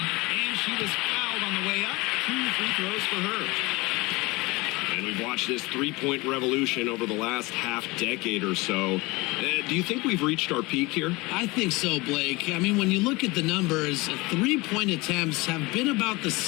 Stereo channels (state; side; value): quieter; right; 23.5 dB